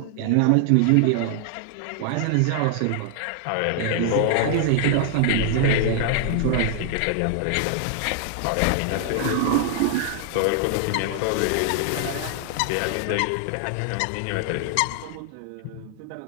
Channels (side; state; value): both; different; correlation 0.00